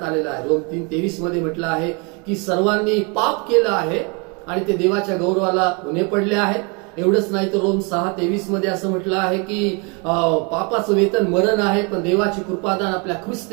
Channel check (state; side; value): quieter; left; 32.4 dB